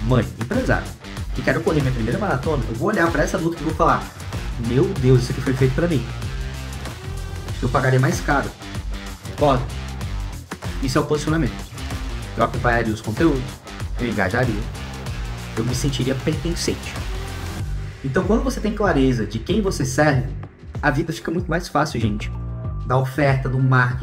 mãe, empresária, que quero correr minha primeira maratona, eu vou olhar para essa luta e vou falar: meu Deus, isso aqui foi feito para mim. Eu pagaria mais caro. Pode. Isso é o posicionamento. Eu acompanharia os conteúdos, eu engajaria, eu me sentiria pertencente. Então, quando você tem clareza de quem você serve, a vida fica muito mais fácil, gente. Da oferta, do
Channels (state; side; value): identical; both; correlation 1.00